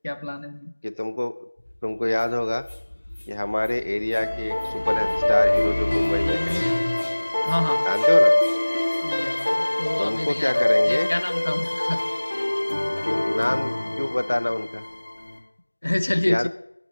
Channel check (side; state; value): both; inverted; correlation -1.00